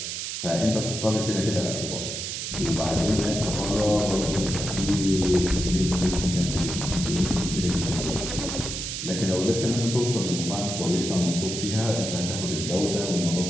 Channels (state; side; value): noise; right; hiss, 4 dB below the sound